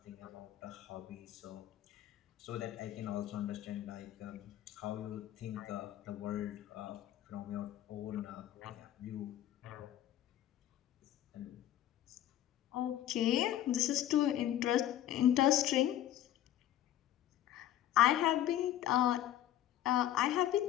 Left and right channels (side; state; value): right; quieter; 12.4 dB